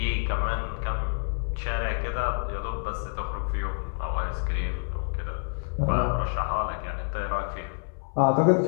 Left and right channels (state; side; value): silent; right; 59 dB below the other